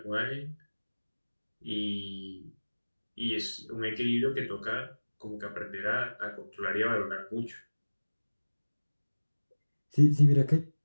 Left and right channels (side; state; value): both; inverted; correlation -1.00